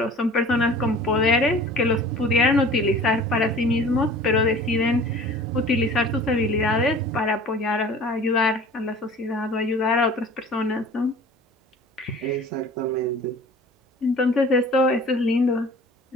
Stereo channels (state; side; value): normal; both; correlation 0.45